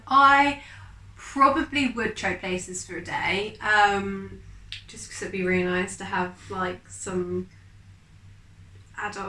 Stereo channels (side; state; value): both; identical; correlation 1.00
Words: I probably would trade places for a day, just because it'd be really nice to have some